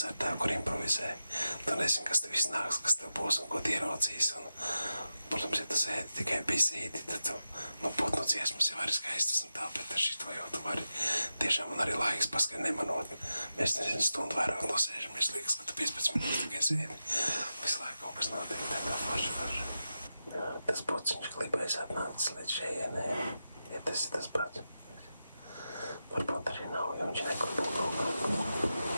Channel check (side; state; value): both; inverted; correlation -0.89